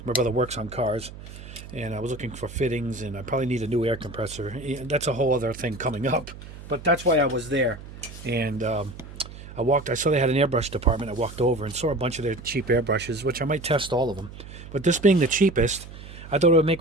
My brother works on cars. And I was looking for fittings, and I probably need a new air compressor. That's a whole other thing coming up. But that's why I was there. And I saw they had an airbrush department. I walked over and saw a bunch of their cheap airbrushes, which I might test all of them. But this being the cheapest, I thought it would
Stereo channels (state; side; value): noise; right; hum, 15 dB below the sound